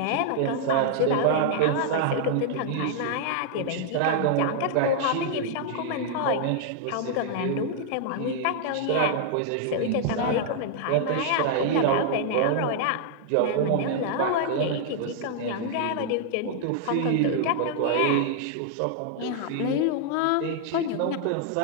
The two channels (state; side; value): different; both; correlation -0.01